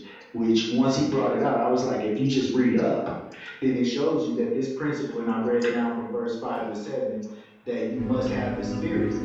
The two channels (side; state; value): both; identical; correlation 1.00